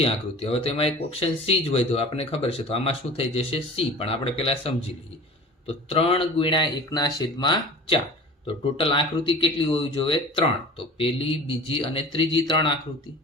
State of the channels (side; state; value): both; normal; correlation 0.40